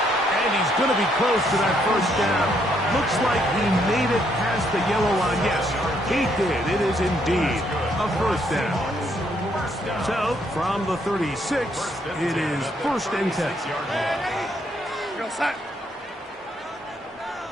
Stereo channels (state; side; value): normal; both; correlation 0.72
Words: And he's going to be close to that first down. Looks like he made it past the yellow line. Yes, he did. It is indeed a first down. So, from the 36, it is 1st and 10.